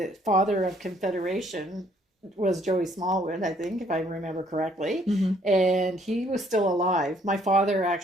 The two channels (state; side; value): normal; both; correlation 0.64